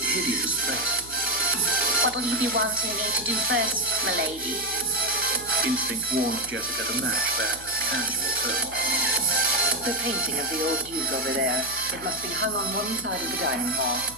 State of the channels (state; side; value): noise; left; hum, 18 dB below the sound